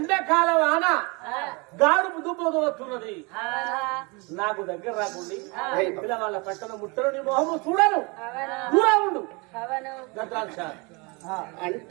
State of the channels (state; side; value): quieter; left; 28.6 dB